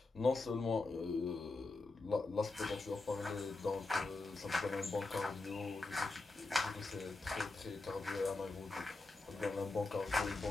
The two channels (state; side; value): quieter; right; 3.4 dB